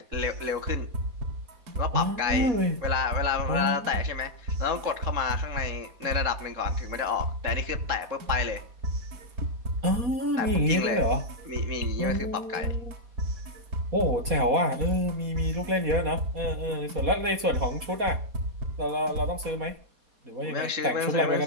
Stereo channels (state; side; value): late; left; 4.2 ms